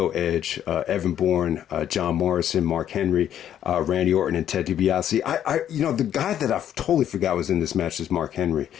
Edge, Evan Bourne, John Morrison, Mark Henry, Randy Orton, and Ted DiBiase. The guy that I totally forgot was in this match is Mark Henry.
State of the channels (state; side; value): quieter; right; 10.4 dB